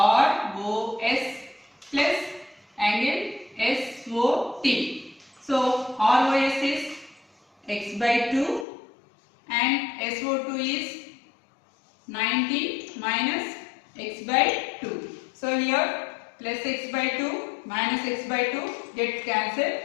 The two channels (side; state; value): right; drops out; at 8.7 s